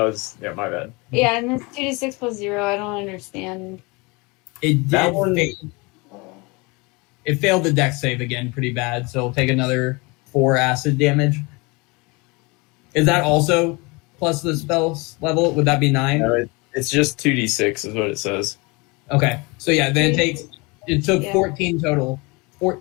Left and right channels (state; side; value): quieter; right; 26.9 dB